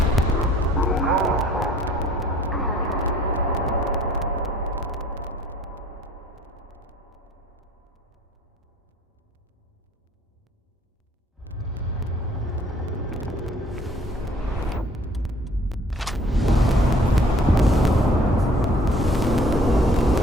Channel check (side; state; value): both; normal; correlation 0.56